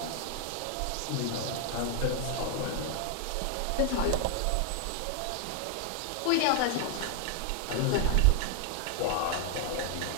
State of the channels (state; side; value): different; both; correlation 0.00